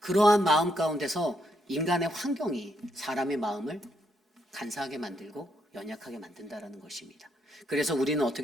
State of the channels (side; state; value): both; normal; correlation 0.76